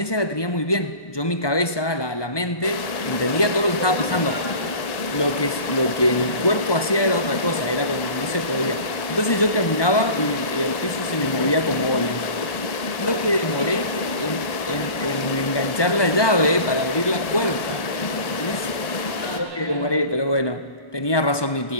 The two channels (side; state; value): right; late; 1.2 ms